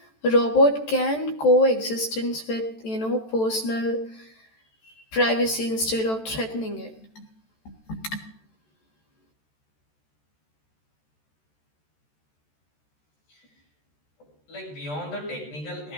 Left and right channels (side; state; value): right; late; 14 ms